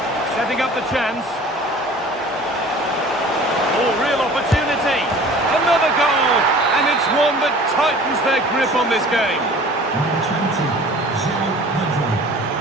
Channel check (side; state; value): both; normal; correlation 0.45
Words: Setting up the chance. Oh, real opportunity. Another goal. And it's one that tightens their grip on this game. Number 20, João Pedro.